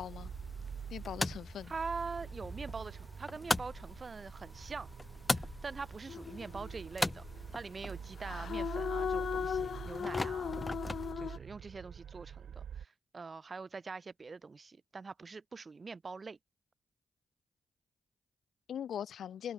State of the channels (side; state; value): both; normal; correlation 0.85